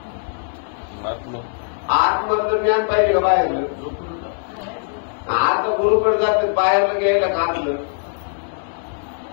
आतमधलं ज्ञान पाहिजे का बाहेरलं? आता गुरुकडे जातात बाहेरलं घ्यायला काढलं.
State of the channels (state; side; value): silent; right; 62 dB below the other